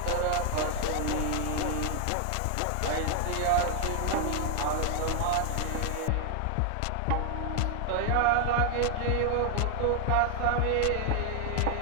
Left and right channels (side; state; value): both; different; correlation 0.00